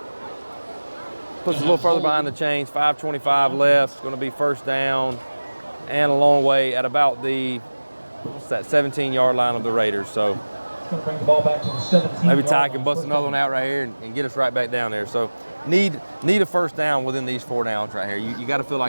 Puts us a little further behind the chains. 5:25 left. It's going to be 1st down and a long way at about the 17-yard line of the Raiders. So going to bring the ball back to the 17. Maybe Ty can bust another one out right here and get us right back down there. So need a 1st down within these 4 downs right here. You got to feel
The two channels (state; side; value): inverted; both; correlation -1.00